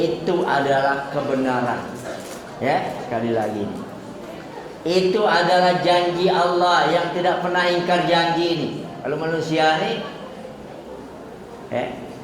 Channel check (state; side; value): identical; both; correlation 1.00